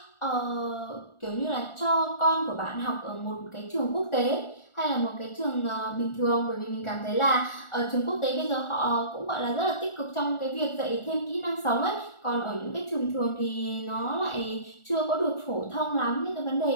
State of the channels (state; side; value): late; right; 1.4 ms